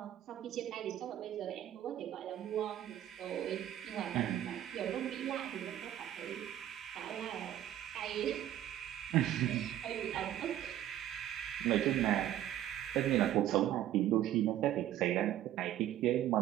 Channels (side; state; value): left; quieter; 12.3 dB